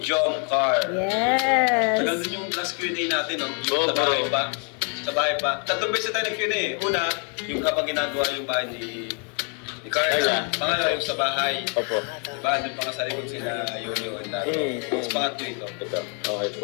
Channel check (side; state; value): right; quieter; 38.6 dB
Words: Jomcar. Yes. Tagal din yung last Q&A natin, no? Oo, Sa bahay bro. pa. Sa bahay pa. Tatlong beses tayo nag-Q&A. Una, yung habang ginagawa yung bahay ni Carla. Carla. Pangalawa, yung sa bahay. Opo. Diba? Doon pa nga sa likod sila Yoyo and Dato. Tapos pangatlo ito. Ito, okay